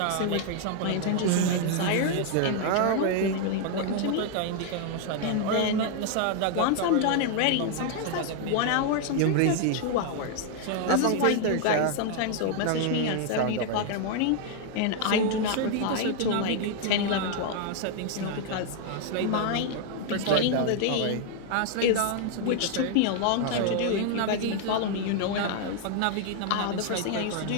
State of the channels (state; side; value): different; both; correlation 0.00